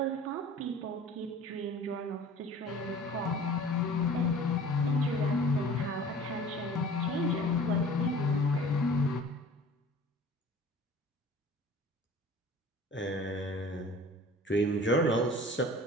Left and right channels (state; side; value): normal; both; correlation 0.44